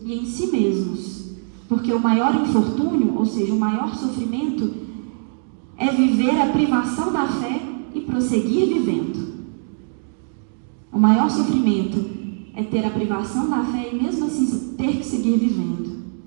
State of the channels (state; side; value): silent; left; digital silence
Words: e em si mesmos, porque o maior infortúnio, ou seja, o maior sofrimento, é viver a privação da fé e prosseguir vivendo. O maior sofrimento é ter a privação da fé e mesmo assim ter que seguir vivendo.